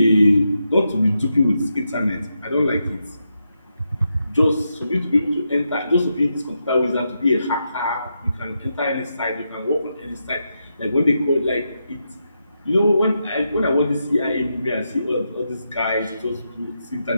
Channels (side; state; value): both; inverted; correlation -0.85